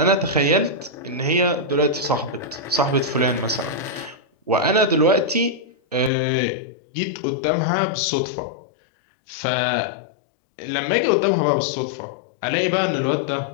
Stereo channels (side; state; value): right; drops out; at 6.1 s